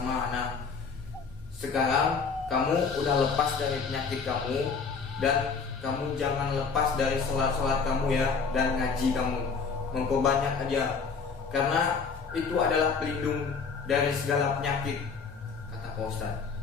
Ana. Sekarang kamu udah lepas dari penyakit kamu, dan kamu jangan lepas dari sholat-sholat kamu ya, dan ngaji kamu, memperbanyak aja, karena itu adalah pelindung dari segala penyakit, kata Pak Ustadz.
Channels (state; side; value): quieter; right; 5.3 dB